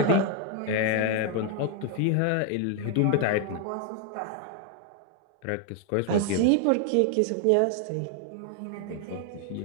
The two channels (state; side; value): different; both; correlation 0.01